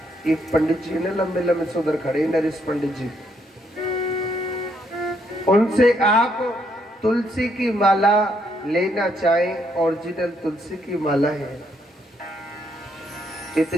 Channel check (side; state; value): both; normal; correlation 0.73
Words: एक पंडित जी ने लंबे लंबे से उधर खड़े, नरेश पंडित जी, उनसे आप तुलसी की माला लेना चाहें, ओरिजिनल तुलसी की माला है।